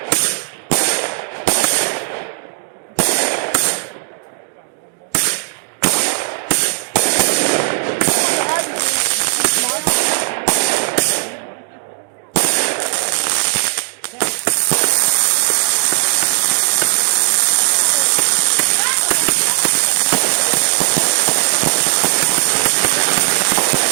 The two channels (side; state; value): left; silent; digital silence